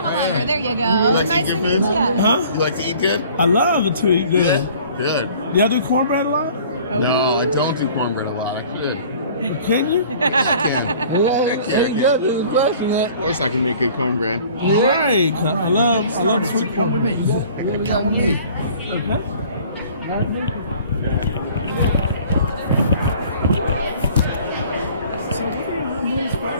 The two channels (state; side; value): inverted; both; correlation -0.50